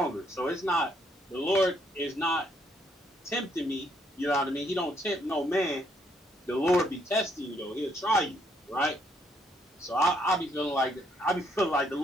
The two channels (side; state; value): both; normal; correlation 0.71